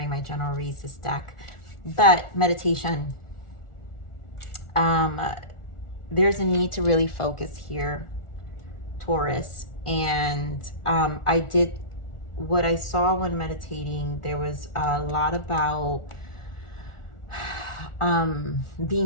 my general reads, this deck. But meditation, there's a need to really focus here, Taurus. And what I saw when meditating, there was a lot about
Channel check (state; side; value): late; right; 1.4 ms